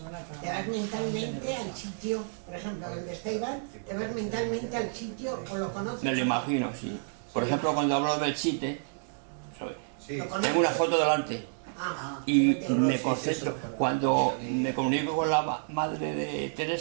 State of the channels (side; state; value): left; silent; digital silence